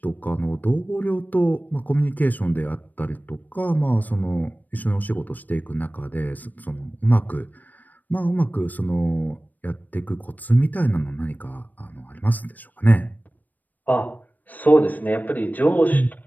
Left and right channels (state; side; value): late; right; 0.084 ms